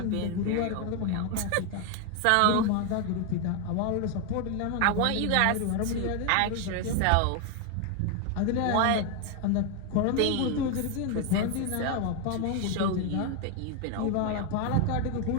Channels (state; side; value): different; both; correlation 0.01